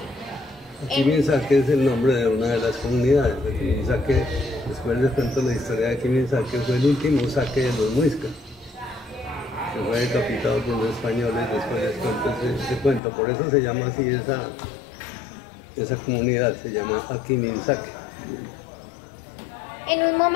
Akimisake es el nombre de una de las comunidades. Akimisake, después les cuento la historia de Akimisake, fue el último saque de los muiscas, que fue decapitado por los españoles. Después les cuento ese cuento, por eso se llama así esa comunidad, se llama Akimisake. En un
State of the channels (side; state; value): right; drops out; at 13.0 s